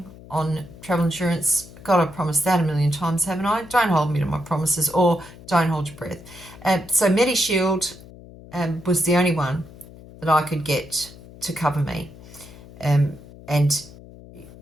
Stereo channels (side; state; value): left; noise; hum, 19 dB below the sound